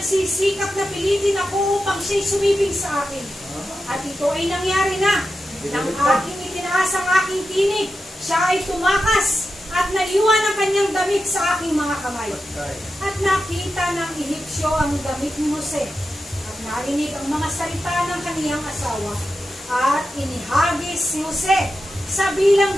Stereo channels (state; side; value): normal; both; correlation 0.90